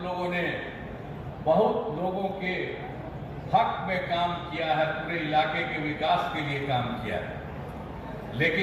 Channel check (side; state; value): both; identical; correlation 1.00